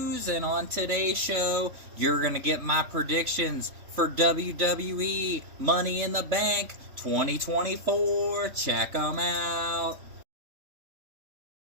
and on today's show, you're going to get my predictions for WWE Money in the Bank 2024. Check them out.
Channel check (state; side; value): late; left; 3.1 ms